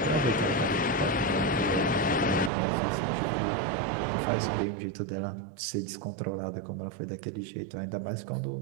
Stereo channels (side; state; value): left; drops out; at 2.5 s